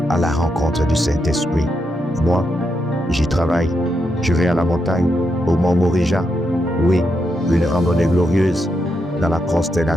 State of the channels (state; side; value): normal; both; correlation 0.83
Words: à la rencontre du Saint-Esprit. Moi, j'y travaille. Je vais à la montagne, au mont Morija. Oui, une randonnée glorieuse dans la